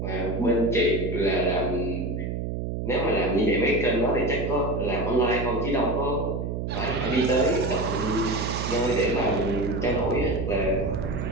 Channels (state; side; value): noise; right; hum, 3 dB below the sound